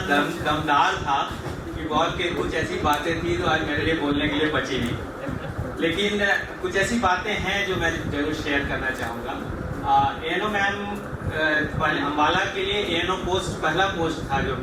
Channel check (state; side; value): identical; both; correlation 1.00